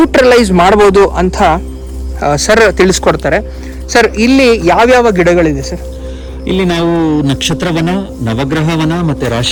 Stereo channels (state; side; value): identical; both; correlation 1.00